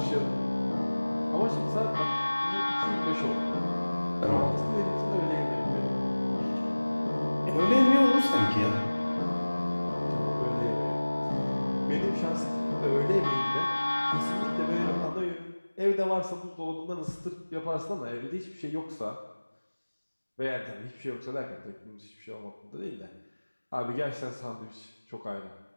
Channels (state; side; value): inverted; both; correlation -1.00